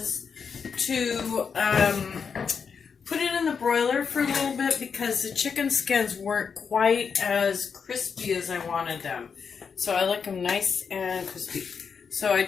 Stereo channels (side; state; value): right; quieter; 6.1 dB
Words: to put it in the broiler for a little bit because the chicken skins weren't quite as crispy as I wanted them. So I like them nice and crispy. So I